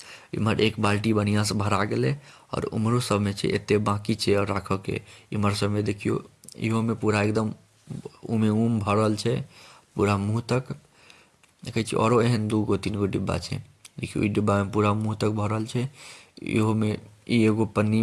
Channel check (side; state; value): both; identical; correlation 1.00